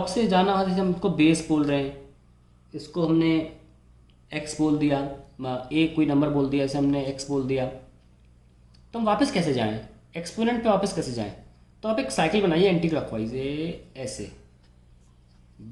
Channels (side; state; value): both; identical; correlation 1.00